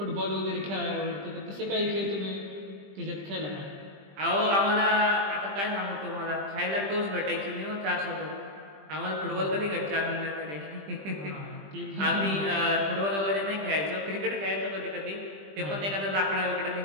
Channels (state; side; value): late; left; 20 ms